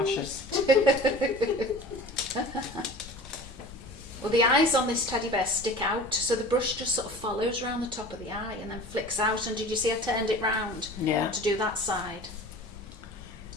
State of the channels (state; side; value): normal; both; correlation 0.39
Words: Well, the eyes on this teddy bear stick out, so the brush just sort of follows around the top of the eye and then flicks out. And did you see I turned it round Yeah. to do that side?